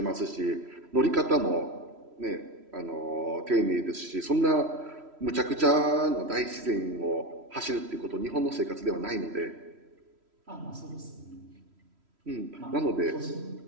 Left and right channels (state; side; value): late; left; 3.1 ms